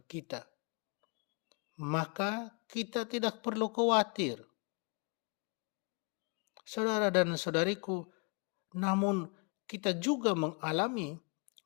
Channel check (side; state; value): right; quieter; 34.0 dB